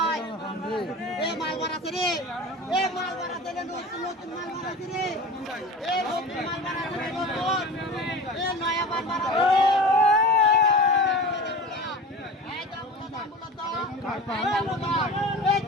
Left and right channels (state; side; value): normal; both; correlation 0.34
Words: এ মাল বাড়াতে রে এ মাল বাড়াতে রে নতুন মাল বাড়াতে রে এ নতুন মাল বাড়াতে রে নতুন এ নয়া মাল বাড়াতে রে